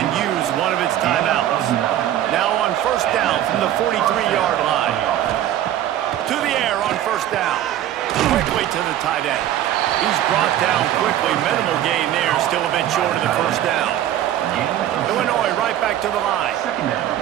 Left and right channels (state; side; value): quieter; left; 12.0 dB